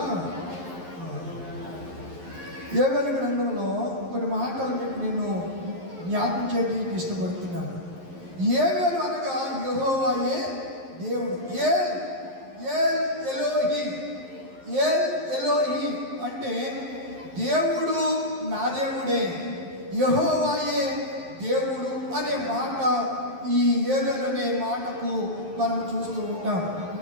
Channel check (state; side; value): late; left; 11 ms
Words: యోవేలు గ్రంథంలో కొన్ని మాటలు మీకు నేను జ్ఞాపకం చేయడానికి ఇష్టపడుతున్నాను. యోవేలు అనగా యెహోవాయే దేవుడు. ఎలోహి అంటే దేవుడు నా దేవుడే, యెహోవాయే దేవుడు అనే మాట ఈ యోవేలు అనే మాటకు మనం చూస్తూ ఉంటాం.